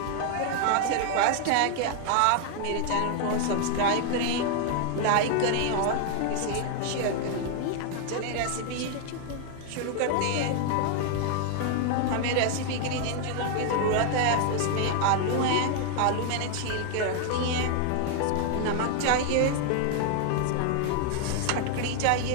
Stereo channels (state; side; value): different; both; correlation 0.00